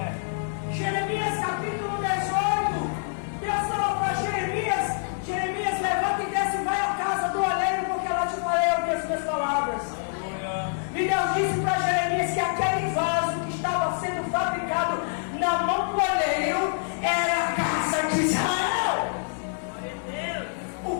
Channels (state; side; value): silent; right; 61 dB below the other